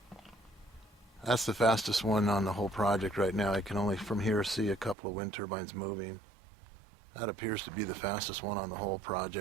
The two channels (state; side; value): drops out; left; at 5.0 s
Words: that's the fastest one on the whole project right now. I can only from here see a couple of wind turbines moving. That appears to be the fastest one on the whole